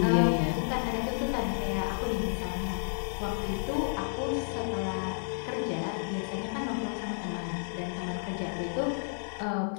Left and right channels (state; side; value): silent; right; digital silence